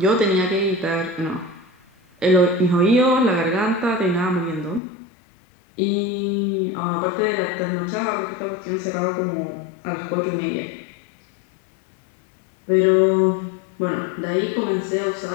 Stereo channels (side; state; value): right; drops out; at 4.8 s